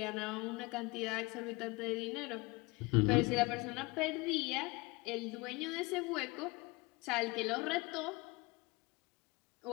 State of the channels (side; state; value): right; quieter; 24.7 dB